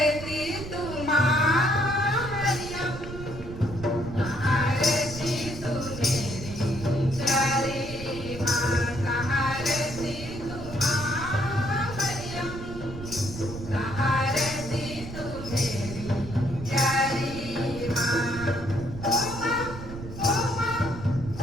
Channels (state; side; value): noise; right; rumble, 11 dB below the sound